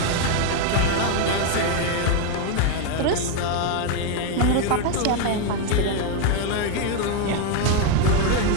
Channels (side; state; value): both; different; correlation 0.01